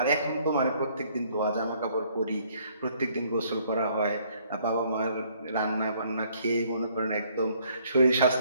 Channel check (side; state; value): both; inverted; correlation -0.64